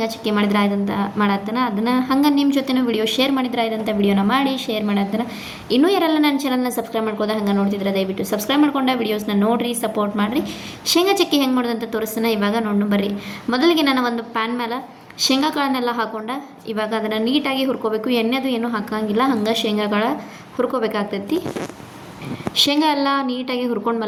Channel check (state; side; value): identical; both; correlation 1.00